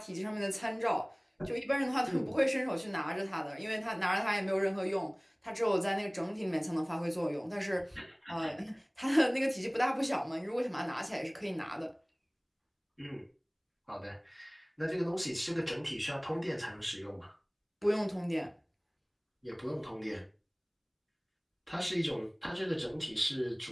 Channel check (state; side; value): identical; both; correlation 1.00